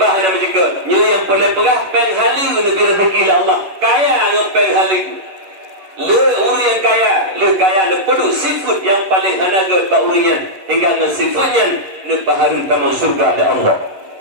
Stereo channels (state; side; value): late; left; 11 ms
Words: hana menjeka. Nyo yang boleh pegah pen hala lebih rezeki oleh Allah. Kaya dengan pen hala. Le uru yang kaya, le kaya le pedu sifat yang paling hanaga ba urian hingga dengan sifatnya ne baharu taman surga oleh Allah.